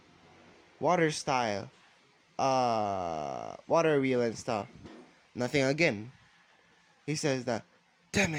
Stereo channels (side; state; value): both; identical; correlation 1.00